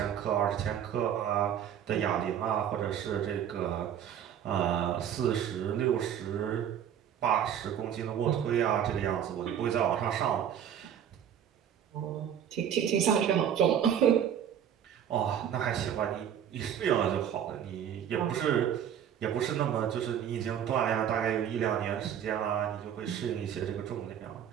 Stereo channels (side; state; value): left; quieter; 9.3 dB